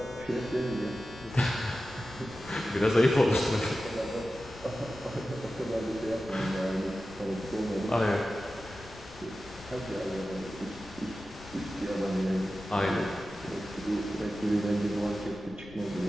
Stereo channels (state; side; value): noise; left; rumble, 19 dB below the sound